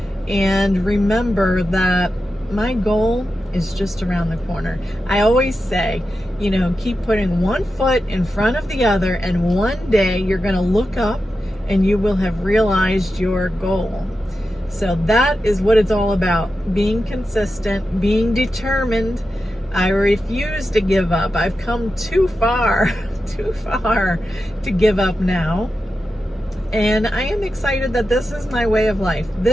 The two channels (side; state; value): both; normal; correlation 0.91